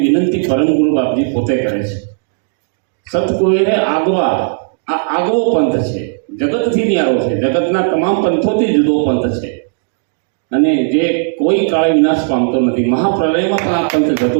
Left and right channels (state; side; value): silent; left; digital silence